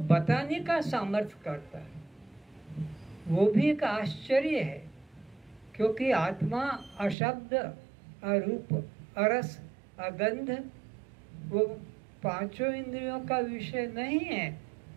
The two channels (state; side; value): drops out; left; at 7.2 s